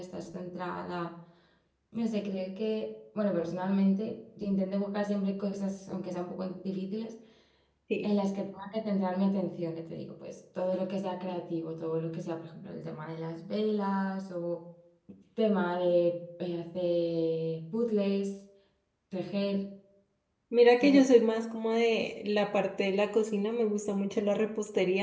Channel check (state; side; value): identical; both; correlation 1.00